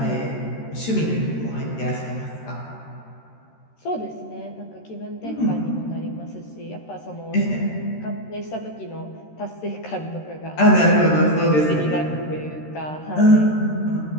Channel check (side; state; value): right; late; 13 ms